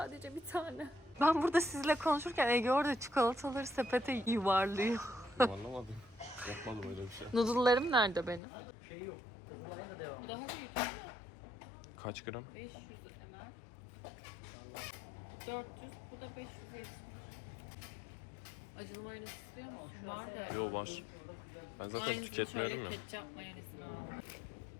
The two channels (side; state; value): right; drops out; at 8.4 s